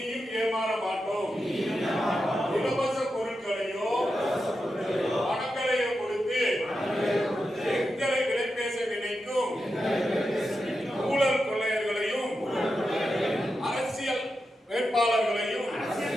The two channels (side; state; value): both; normal; correlation 0.89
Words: ஏமாற மாட்டோம். இலவச பொருட்களையோ பணங்களையோ கொடுத்து எங்களை விலை பேச நினைக்கும் ஊழல் கொள்ளையர்களையும் அரசியல் வேட்பாளர்களையும்